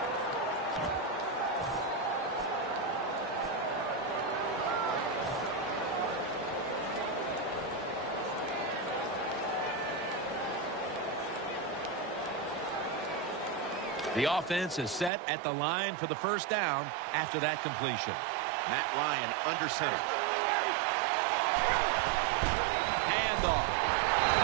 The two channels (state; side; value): drops out; left; at 15.1 s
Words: The offense is set at the line for the first down after that completion. Matt Ryan under center. Handoff.